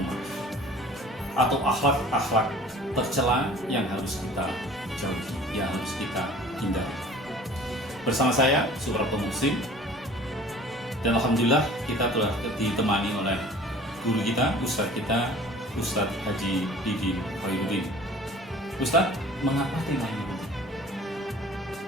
atau akhlak-akhlak tercela yang harus kita jauhi, yang harus kita hindari. Bersama saya Suprapto Muslim, dan alhamdulillah kita telah ditemani oleh guru kita, Ustadz Haji Didin Khairuddin. Ustadz, mengapa tema ini penting?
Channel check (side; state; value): both; normal; correlation 0.47